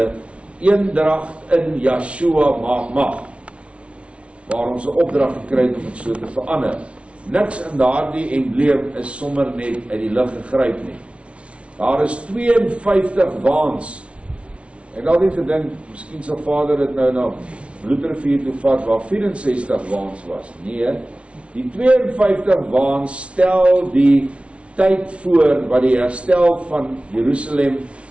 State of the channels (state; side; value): late; left; 0.061 ms